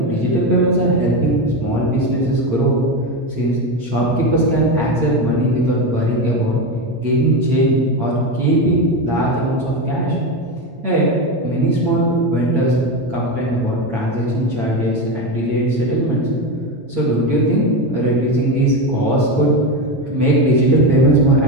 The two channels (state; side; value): late; left; 8.7 ms